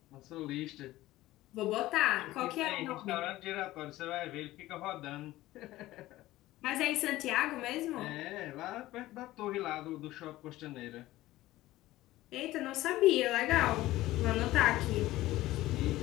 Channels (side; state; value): right; quieter; 16.6 dB